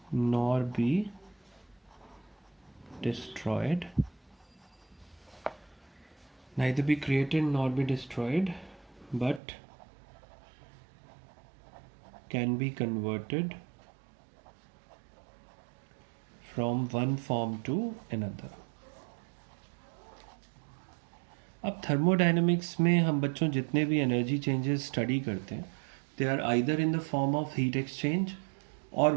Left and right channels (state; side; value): drops out; left; at 9.4 s